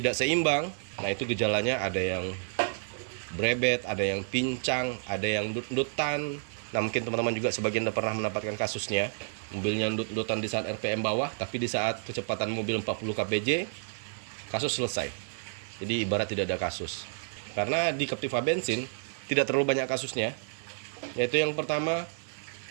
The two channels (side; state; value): left; silent; 58 dB below the other